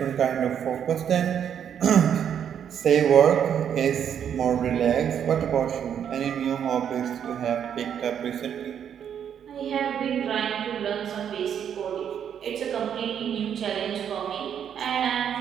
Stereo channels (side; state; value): left; quieter; 8.7 dB